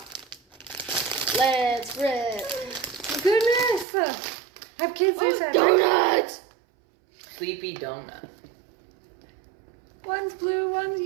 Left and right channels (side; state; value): left; drops out; at 3.9 s